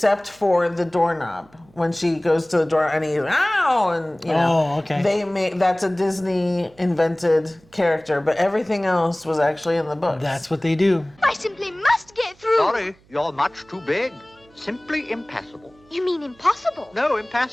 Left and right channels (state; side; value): noise; right; hum, 30 dB below the sound